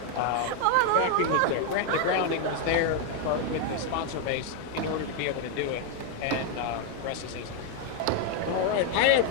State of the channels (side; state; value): both; different; correlation 0.01